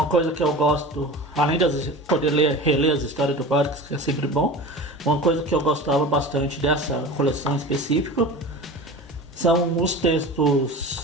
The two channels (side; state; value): both; normal; correlation 0.34